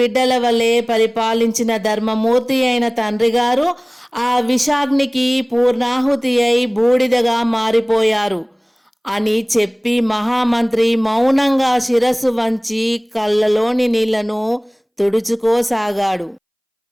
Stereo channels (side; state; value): both; identical; correlation 1.00